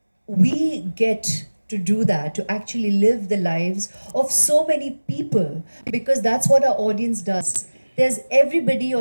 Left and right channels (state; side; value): inverted; both; correlation -1.00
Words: We get to do that, to actually live the lives of so many people, because that's what our audience does. There's everybody